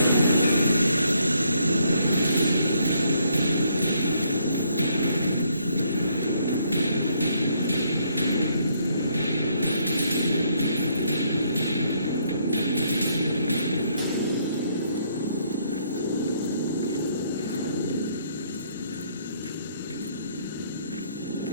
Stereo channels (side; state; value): both; inverted; correlation -0.70